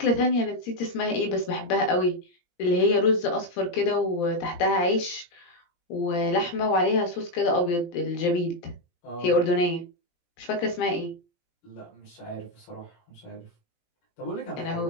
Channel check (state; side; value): late; right; 17 ms